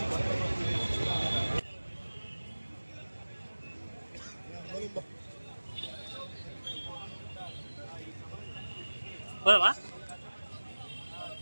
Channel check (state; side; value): inverted; both; correlation -1.00